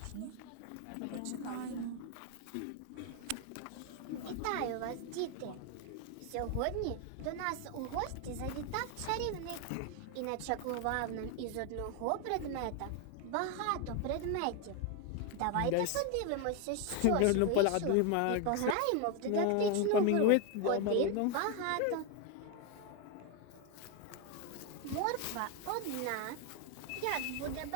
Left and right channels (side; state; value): both; different; correlation 0.01